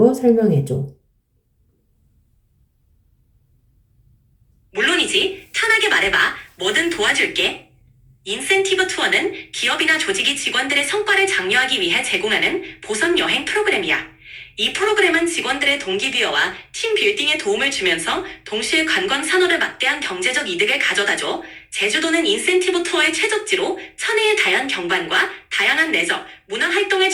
설명해줘. 물론이지. 편하게 말해봐. 뭐든 도와줄게. 인센티브 투어는 기업이나 조직이 직원들의 성과를 장려하기 위해 제공하는 보상 여행 프로그램이야. 이 프로그램은 직원들의 동기부여와 팀 빌딩에 도움을 주면서 동시에 관광 산업에 막대한 경제적 이득을 가져다줘. 제주도는 인센티브 투어의 최적지로 천혜의 다양한 경관과 다양한 내적, 문화 활동을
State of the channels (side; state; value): both; identical; correlation 1.00